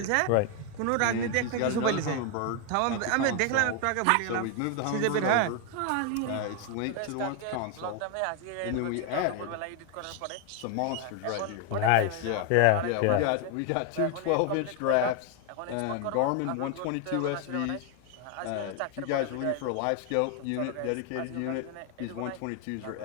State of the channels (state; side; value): different; both; correlation 0.01